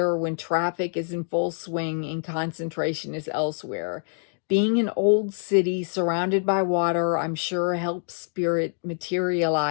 when traffic is in full swing and concentration is elsewhere. Being an old city surrounded by water, I'm sure helps spirit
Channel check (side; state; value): right; silent; digital silence